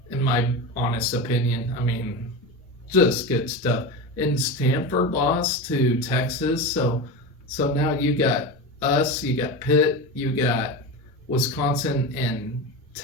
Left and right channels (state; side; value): normal; both; correlation 0.23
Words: in my honest opinion. I mean, just good stuff. And Stanford lost to Texas, so now you got us, you got Pitt, you got Wisconsin and